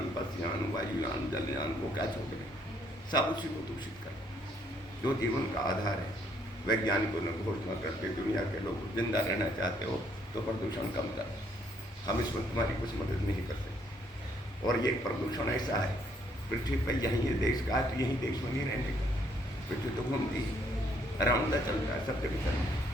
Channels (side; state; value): both; normal; correlation 0.69